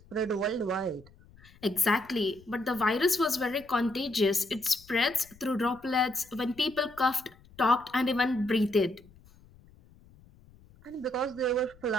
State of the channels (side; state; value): left; noise; rumble, 26 dB below the sound